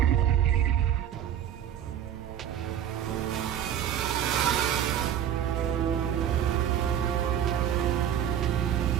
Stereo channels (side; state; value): left; quieter; 10.1 dB